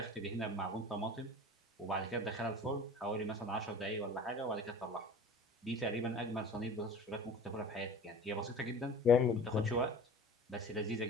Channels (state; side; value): normal; both; correlation 0.41